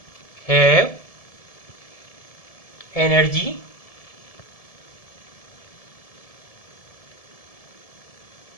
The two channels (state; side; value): late; right; 1.7 ms